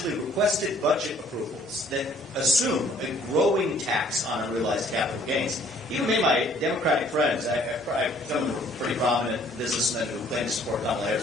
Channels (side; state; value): both; normal; correlation 0.59